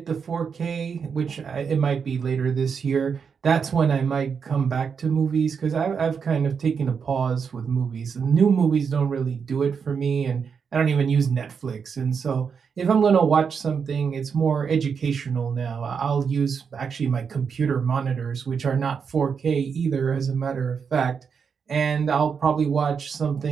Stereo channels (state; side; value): quieter; left; 6.3 dB